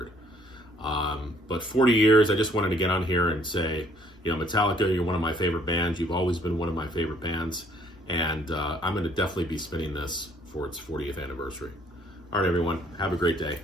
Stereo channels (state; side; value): normal; both; correlation 0.62